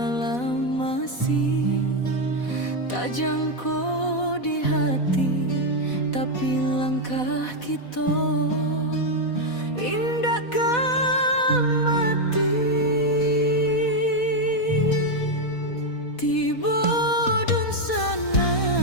masih tak jangkau di hati, tapi langkah kita indahkan mati. Tiba dun sana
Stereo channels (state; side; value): late; right; 4.1 ms